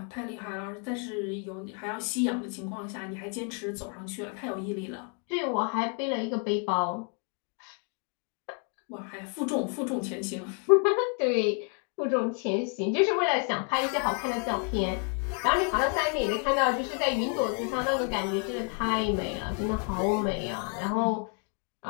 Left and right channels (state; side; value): quieter; right; 39.1 dB